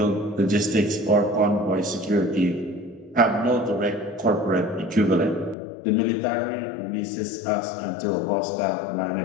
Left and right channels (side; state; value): right; drops out; at 5.6 s